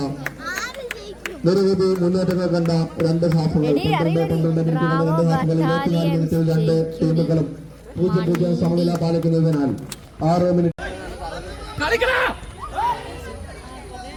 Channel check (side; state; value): both; identical; correlation 1.00